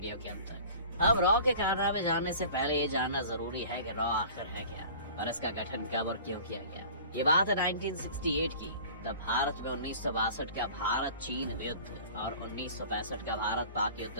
के अंत तक। अब रॉ के कारनामे जानने से पहले ये जानना जरूरी है कि रॉ आखिर है क्या और इसका गठन कब और क्यों किया गया। ये बात है 1968 की। तब भारत में 1962 का भारत चीन युद्ध और 1965 का भारत पाक युद्ध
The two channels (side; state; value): both; inverted; correlation -0.43